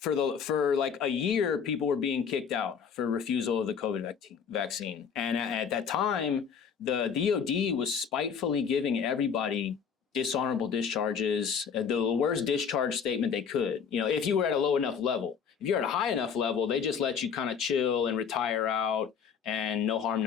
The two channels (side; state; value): right; quieter; 6.9 dB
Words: like a year, people were being kicked out for refusal of the COVID vaccine. And at that time, the DoD was spitefully giving everybody dishonorable discharges, the worst discharge statement they could. If you were at a low enough level. If you're at a high enough level, they just let you kind of chill and retire out and no harm,